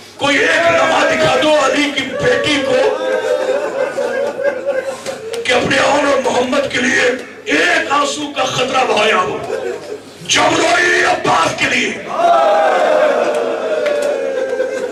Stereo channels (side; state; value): both; identical; correlation 1.00